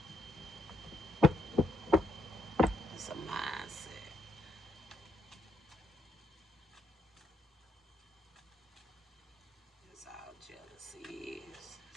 It's a mindset. That's all jealousy is.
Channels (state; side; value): normal; both; correlation 0.76